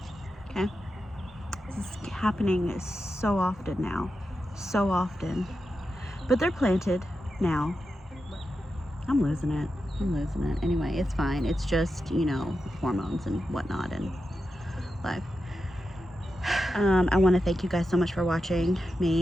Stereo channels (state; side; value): normal; both; correlation 0.89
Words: This is happening so often now. So often. But they're planted now. I'm losing it. Anyway, it's fine. It's just, you know, hormones and whatnot and life. I want to thank you guys so much for watching